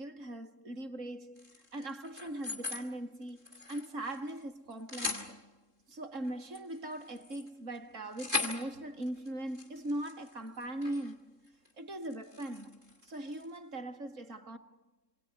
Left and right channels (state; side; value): late; left; 3.7 ms